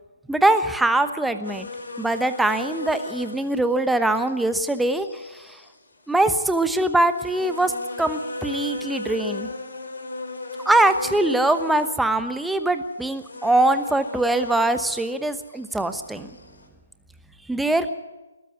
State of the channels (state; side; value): normal; both; correlation 0.69